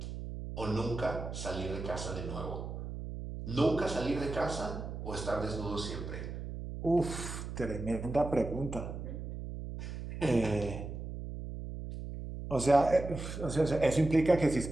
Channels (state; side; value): noise; right; hum, 7 dB below the sound